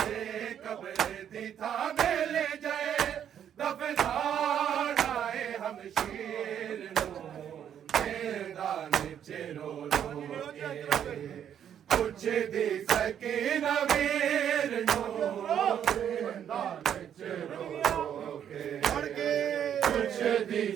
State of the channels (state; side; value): quieter; left; 9.3 dB